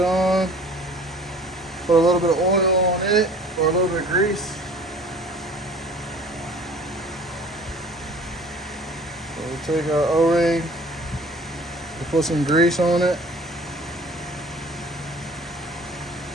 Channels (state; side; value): normal; both; correlation 0.48